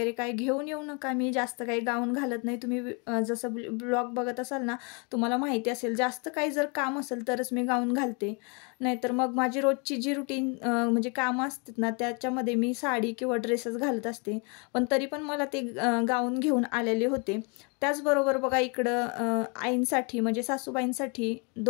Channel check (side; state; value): right; quieter; 33.9 dB